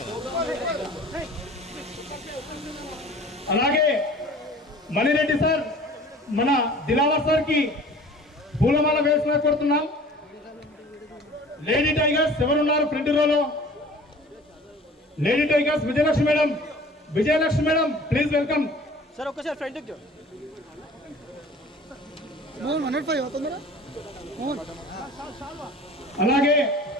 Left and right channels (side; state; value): both; normal; correlation 0.46